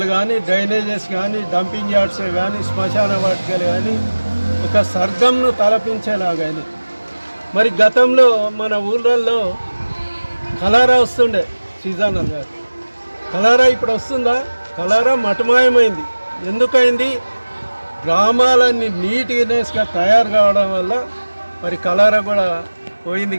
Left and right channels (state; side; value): inverted; both; correlation -1.00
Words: కానీ, డ్రైనేజెస్ కానీ, డంపింగ్ యార్డ్స్ కానీ, శ్మశాన వాటికలు కానీ ఒక స్వర్గంను తలపించేలాగాని. మరి గతంలో మన ఊళ్ళల్లో కలారా వస్తుండే సీజనల్గా, కలారా ఇప్పుడు వస్తుందా? కలారా మటుమాయమైంది. ఎందుకైంది? గ్రామాలన్నీ నీట్నెస్గా తయారు కావడం వల్ల మరి కలారా కూడా